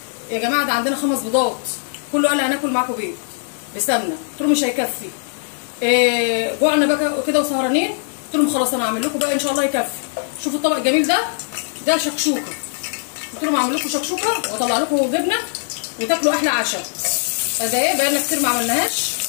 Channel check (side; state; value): right; silent; digital silence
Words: يا جماعه، ده عندنا 5 بيضات، كله قال لي هناكل معاكم بيض بسمنه. قلت لهم مش هيكفي، جوعنا بقى كده وسهرانين. قلت لهم خلاص انا هعمل لكم بقى ان شاء الله يكفي. شوفوا الطبق الجميل ده شكشوكه. قلت لهم هعمل لكم شكشوكه واطلع لكم جبنه وتاكلوا احلى عشاء. فده ايه بقالنا كتير ما عملناهاش.